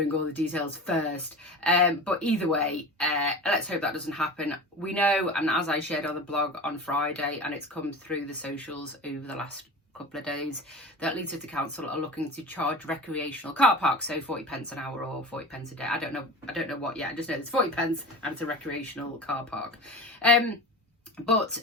all the details first, but either way, let's hope that doesn't happen. We know, and as I shared on the blog on Friday, and it's come through the socials over the last couple of days, that Leeds City Council are looking to charge recreational car parks, so 40 pence an hour or 40 pence a day. I don't know what yet. I just know it's 40 pence and it's a recreational car park. And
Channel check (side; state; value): both; normal; correlation 0.32